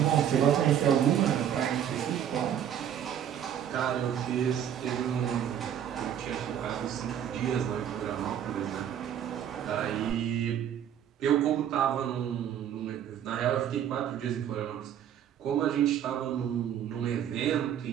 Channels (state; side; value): quieter; left; 9.8 dB